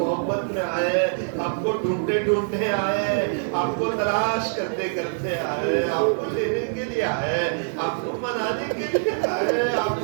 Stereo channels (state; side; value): silent; left; digital silence